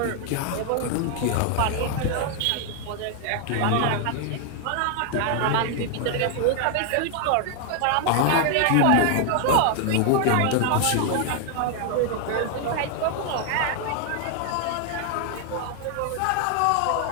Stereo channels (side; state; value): both; different; correlation 0.00